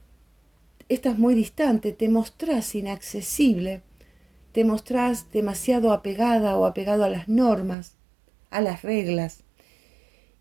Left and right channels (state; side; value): drops out; left; at 7.8 s